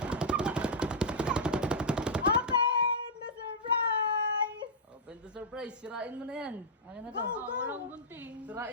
Open the surprise! Open the surprise. Sirain mo na yan. Akin na to. Go, go! Walang bunting.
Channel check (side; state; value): both; normal; correlation -0.10